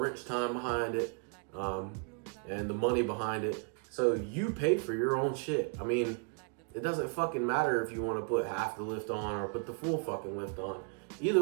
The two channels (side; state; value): left; quieter; 39.9 dB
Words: time behind it, and the money behind it. So you paid for your own shit. I mean, it doesn't fucking matter if you want to put half the lift on or put the full fucking lift on.